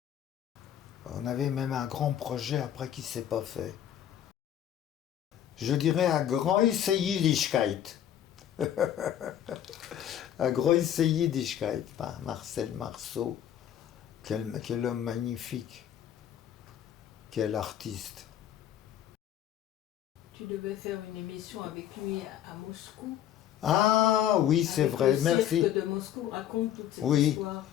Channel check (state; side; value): quieter; right; 10.6 dB